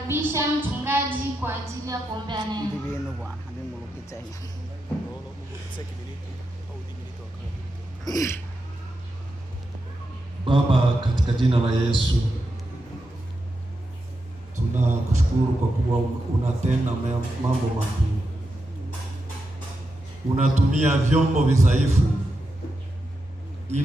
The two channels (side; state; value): both; normal; correlation 0.87